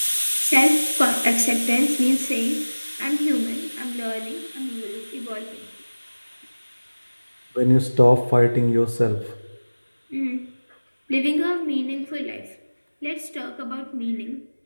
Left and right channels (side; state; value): both; inverted; correlation -1.00